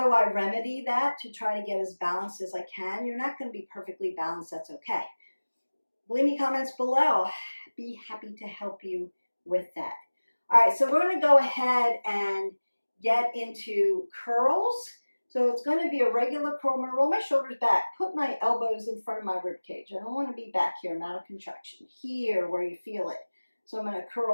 remedy that to try to get as balanced as I can. You're not going to be perfectly balanced. That's okay. Leave me comments below. Be happy to help you with that. All right, so we're going to go ahead and get into curls. So it's going to be a regular curl. I'm going to roll my shoulders back, put my elbows in front of my rib cage. I don't want to be back here, I'm out of contraction. Here where you feel it. So I'm going to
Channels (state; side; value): inverted; both; correlation -1.00